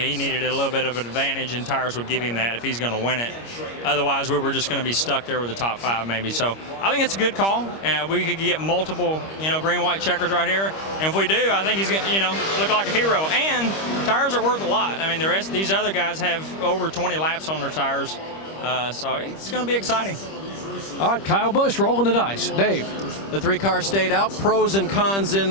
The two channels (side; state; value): right; late; 25 ms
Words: needed a little bit of an advantage, and tires would give him that if he's going to win it. Otherwise, we were just going to be stuck there with the top 5 maybe. So I think it's a good call. We could get multiple, green-white checkers right here. And if we do, I think he's going to, look like a hero. And tires are worth a lot. I mean, the rest of these other guys have over 20 laps on their tires. So it's going to be exciting. All right, Kyle Busch rolling the dice. Dave. The 3 cars stayed out. Pros and cons